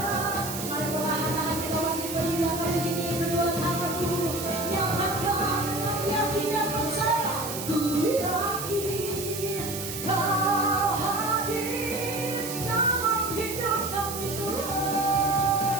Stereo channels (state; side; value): noise; right; hiss, 7 dB below the sound